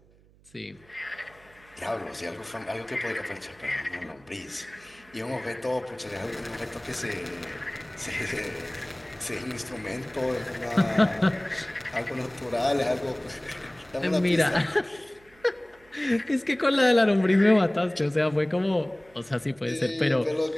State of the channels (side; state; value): right; noise; hum, 28 dB below the sound